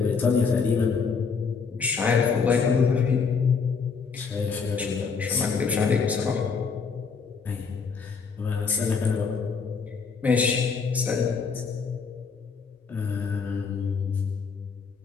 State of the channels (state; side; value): quieter; right; 5.4 dB